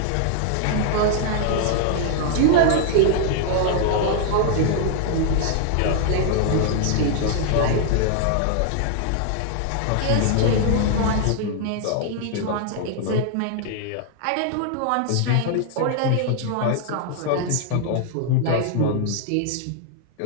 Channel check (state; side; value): different; both; correlation 0.00